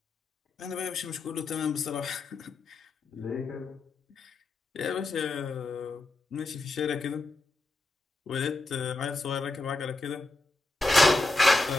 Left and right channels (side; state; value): right; quieter; 3.0 dB